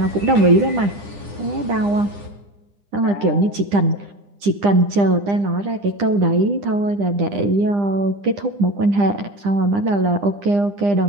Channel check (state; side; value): late; left; 9.9 ms